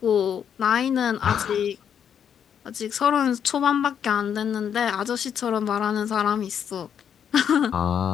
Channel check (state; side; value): quieter; right; 8.3 dB